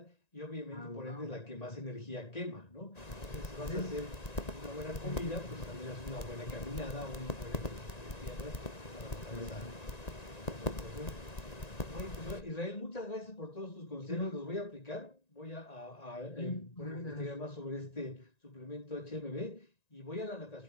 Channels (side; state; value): right; late; 1.9 ms